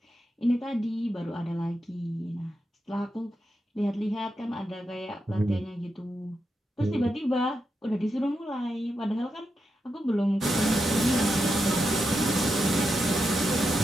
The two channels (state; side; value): normal; both; correlation 0.86